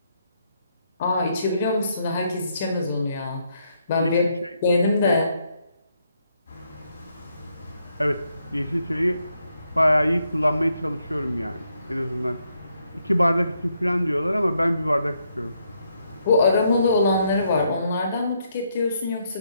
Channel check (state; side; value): inverted; both; correlation -0.77